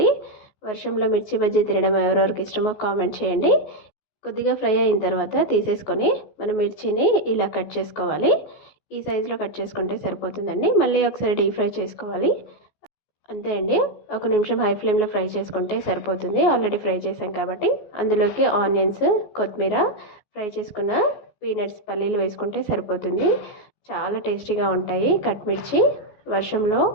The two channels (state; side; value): late; right; 14 ms